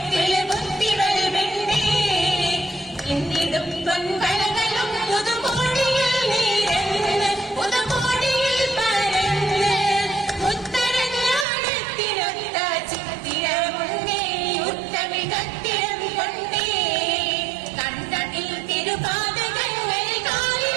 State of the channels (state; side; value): drops out; left; at 11.5 s